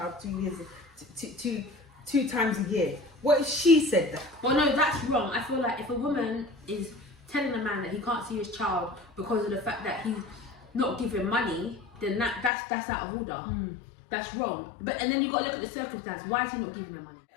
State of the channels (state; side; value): drops out; right; at 12.5 s